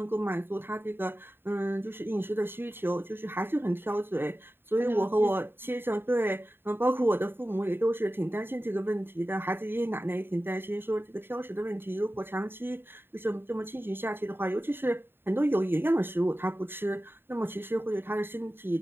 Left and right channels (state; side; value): late; left; 0.11 ms